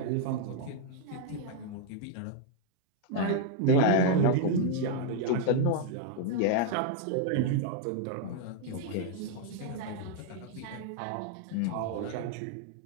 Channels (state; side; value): different; both; correlation 0.00